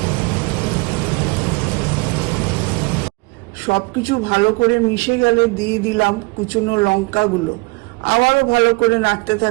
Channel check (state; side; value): quieter; left; 28.0 dB